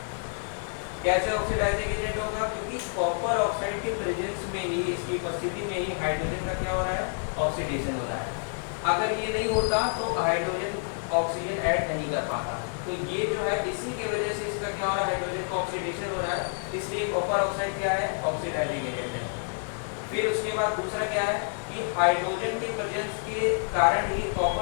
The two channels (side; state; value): right; silent; 59 dB below the other